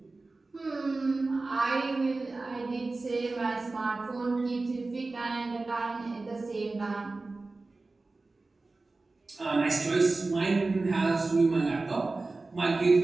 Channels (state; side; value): quieter; left; 3.4 dB